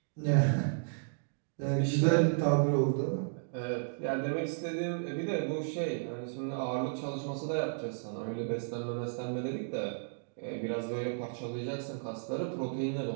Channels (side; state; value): left; silent; digital silence